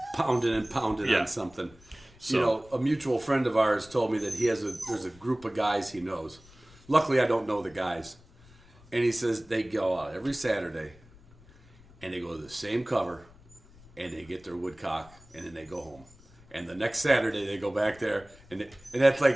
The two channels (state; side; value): noise; left; rumble, 25 dB below the sound